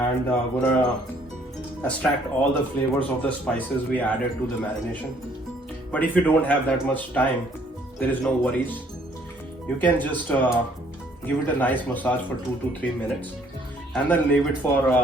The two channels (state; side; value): normal; both; correlation 0.63